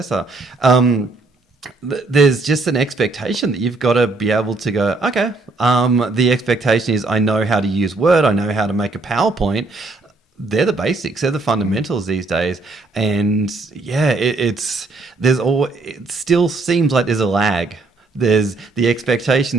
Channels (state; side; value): quieter; left; 3.4 dB